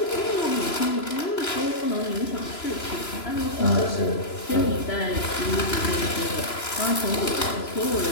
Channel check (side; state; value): right; late; 3.0 ms